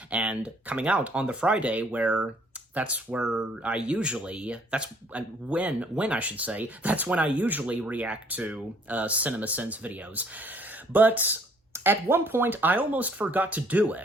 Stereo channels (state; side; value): normal; both; correlation 0.61